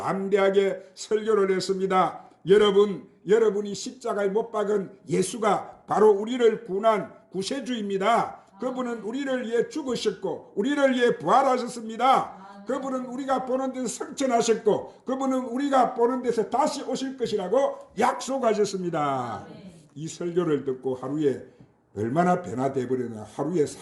설교를 했습니다. 여러분이 십자가에 못 박은 예수가 바로 우리를 구원한 구세주입니다. 그분은 우리를 위해 죽으셨고 우리를 위해 부활하셨습니다. 그분은 우리가 보는 데서 성천하셨고 그분은 우리가 보는 데서 다시 오실 것이라고 약속하셨습니다. 이 설교를 듣고 하루에 얼마나 변화돼 버렸나. 하루에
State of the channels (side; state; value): both; identical; correlation 1.00